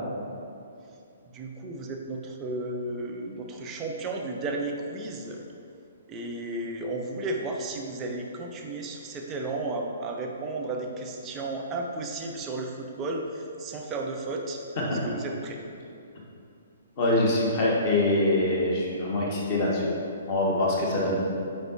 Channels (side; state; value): both; inverted; correlation -0.35